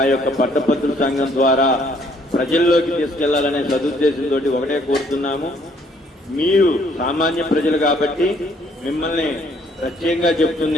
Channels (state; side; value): normal; both; correlation 0.64